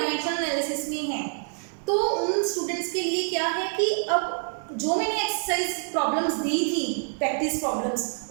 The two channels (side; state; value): left; silent; 58 dB below the other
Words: एनालिसिस में है। तो उन स्टूडेंट्स के लिए क्या है कि अब जो मैंने एक्सरसाइज प्रॉब्लम्स दी थी, प्रैक्टिस प्रॉब्लम्स,